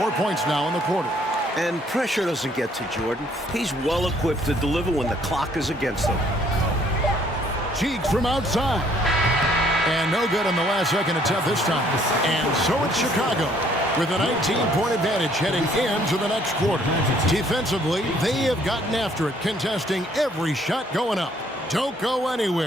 points now in the quarter. And pressure doesn't get to Jordan. He's well equipped to deliver when the clock is against him. Cheeks from outside. And no good on the last second attempt this time. And so it's Chicago with a 19-point advantage heading into the next quarter. Defensively, they have gotten after it, contesting every shot going up. Don't go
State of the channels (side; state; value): both; normal; correlation 0.63